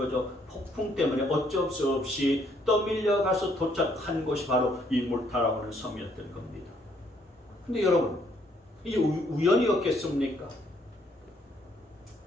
폭풍 때문에 어쩔 수 없이 떠밀려 가서 도착한 곳이 바로 이 몰타라고 하는 섬이었던 겁니다. 근데 여러분, 이게 우연이었겠습니까?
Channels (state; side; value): normal; both; correlation 0.68